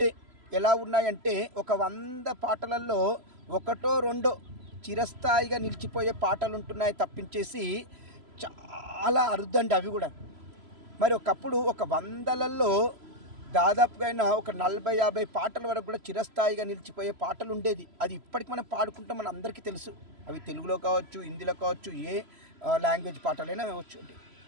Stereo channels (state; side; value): late; left; 3.0 ms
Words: ఎలా ఉన్నాయంటే, ఒక 100 పాటలలో ఒకటో రెండో చిరస్థాయిగా నిలిచిపోయే పాటలు ఉంటున్నాయి తప్పించేసి చాలా అరుదండి అవి కూడా. మరి ఒకప్పుడు ఒక 100లలో దాదాపుగా అయినా ఒక 40-50 పాటల వరకు కూడా చిరస్థాయిగా నిలిచిపోయే పాటలు ఉండేది. అది ఇప్పటికి మనం పాడుకుంటాం, మన అందరికీ తెలుసు. అవి తెలుగులో కావచ్చు, హిందీలో కావచ్చు, ఏ లాంగ్వేజ్ పాటలైనా కావచ్చు.